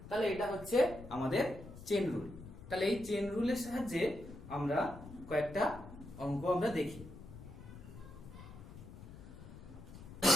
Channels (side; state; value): left; noise; rumble, 15 dB below the sound